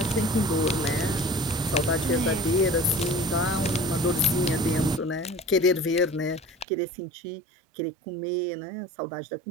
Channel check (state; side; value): drops out; left; at 6.7 s